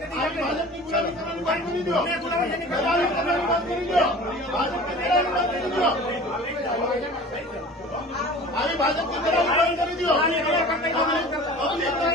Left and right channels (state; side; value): normal; both; correlation 0.41